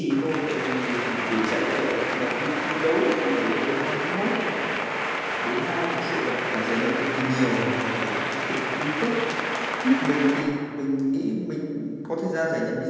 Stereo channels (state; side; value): identical; both; correlation 1.00